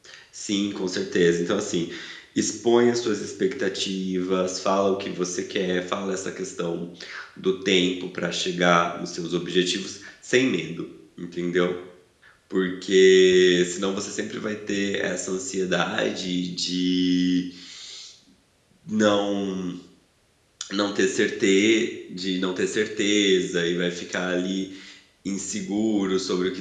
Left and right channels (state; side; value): identical; both; correlation 1.00